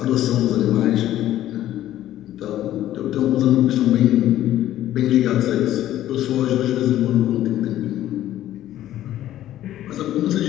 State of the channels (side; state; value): right; quieter; 13.1 dB